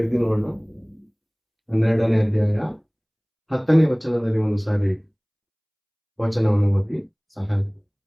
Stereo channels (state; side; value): identical; both; correlation 1.00